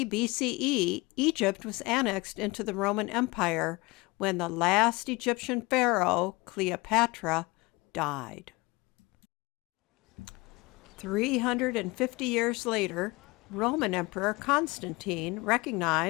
BCE, Egypt was annexed into the Roman Empire when the last Egyptian pharaoh, Cleopatra, died. 350 years later, Roman Emperor Constantine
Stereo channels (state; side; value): quieter; right; 23.9 dB